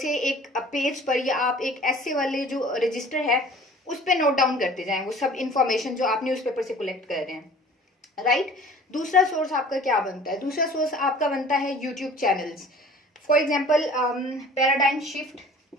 एक पेज पर या आप एक एस्से वाले जो रजिस्टर है उस पर नोट डाउन करते जाएं वो सब इंफॉर्मेशन जो आप न्यूज़पेपर से कलेक्ट कर रहे हैं, राइट। दूसरा सोर्स आपका क्या बनता है? दूसरा सोर्स आपका बनता है YouTube channels. For example paradigm shift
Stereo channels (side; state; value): both; normal; correlation 0.47